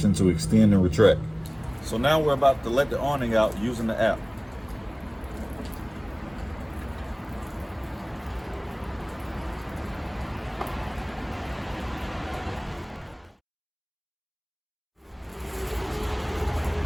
to extend and retract. So now we're about to let the awning out using the app.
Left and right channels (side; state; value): both; identical; correlation 1.00